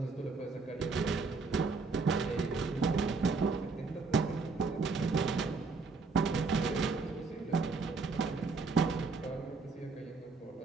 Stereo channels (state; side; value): quieter; left; 4.2 dB